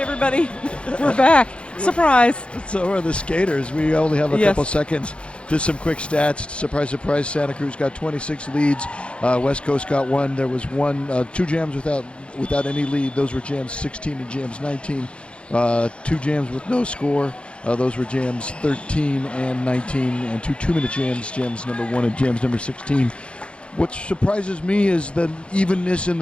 We're back. Surprise. So are the skaters. We only have a Yes. couple seconds. Just some quick stats. Surprise, surprise. Santa Cruz got 26 leads. West Coast got one. There was two jams without any lead. Those were jams 16 and jams 19. Two jams with no score. Those were jams 13 and 19, and two 2-minute jams, jams number 1 and jams number 16. What surprises me is the evenness in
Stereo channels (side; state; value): right; late; 0.058 ms